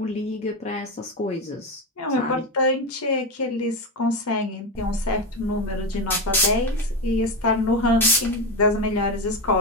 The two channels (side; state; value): both; normal; correlation 0.15